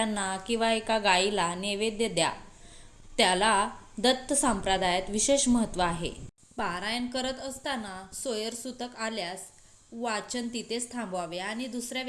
किंवा एका गायीला नैवेद्य द्या. त्याला दत्त संप्रदायात विशेष महत्त्व आहे. पारायण करत असताना सोयरसूतक आल्यास वाचन तिथेच थांबवावे आणि दुसऱ्या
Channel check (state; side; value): identical; both; correlation 1.00